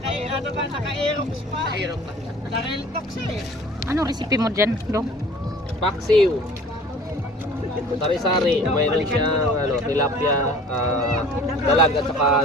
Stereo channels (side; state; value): both; normal; correlation 0.47